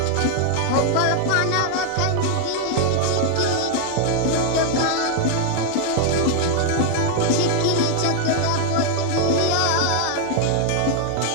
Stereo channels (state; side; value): different; both; correlation 0.00